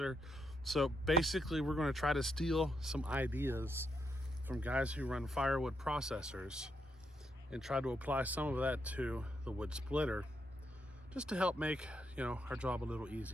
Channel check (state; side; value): normal; both; correlation 0.79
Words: So basically we're going to try to steal some ideas from guys who run Firewood processors and try to apply some of that to the wood splitter just to help make our job a little